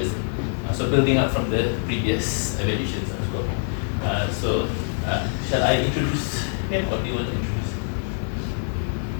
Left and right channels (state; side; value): silent; right; 62 dB below the other